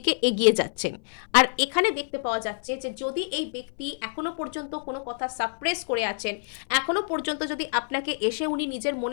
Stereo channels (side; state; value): right; silent; 58 dB below the other